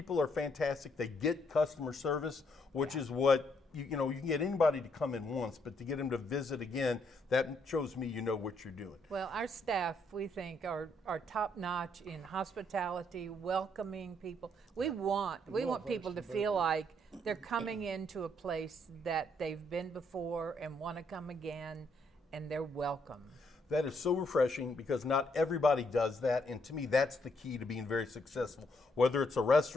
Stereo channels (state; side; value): normal; both; correlation 0.72